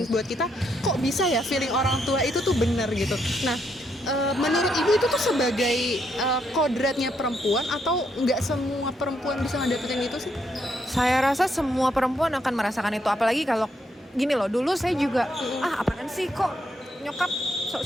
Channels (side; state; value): both; normal; correlation 0.76